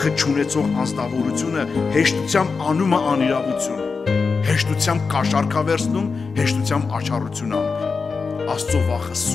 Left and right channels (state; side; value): quieter; right; 4.8 dB